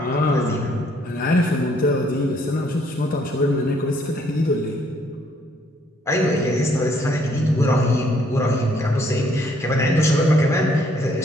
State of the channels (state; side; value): normal; both; correlation 0.66